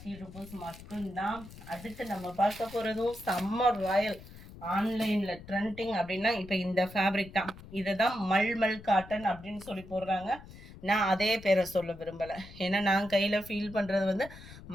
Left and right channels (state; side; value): noise; left; rumble, 17 dB below the sound